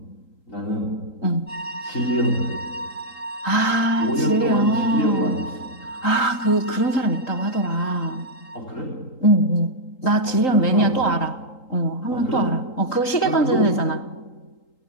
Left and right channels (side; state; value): right; late; 3.8 ms